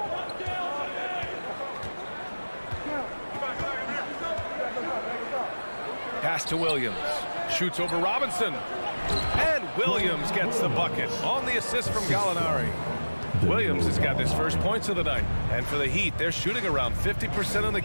Pass to Williams. Shoots over Robinson. And Williams gets the bucket on the assist from Gallinari. Williams has got his first points of the night. And for the Heat, they're shooting around 50% in the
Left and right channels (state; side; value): inverted; both; correlation -1.00